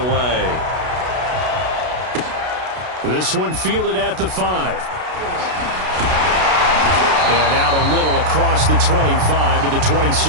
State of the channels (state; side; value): late; left; 32 ms